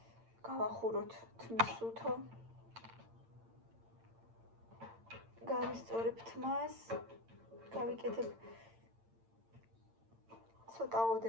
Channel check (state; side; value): late; left; 8.8 ms